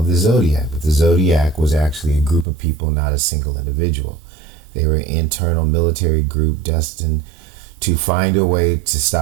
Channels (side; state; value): left; drops out; at 2.5 s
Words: the Zodiac. But the Zodiac was actually a group of people, not a single individual. They were an internal military group destined to find a way to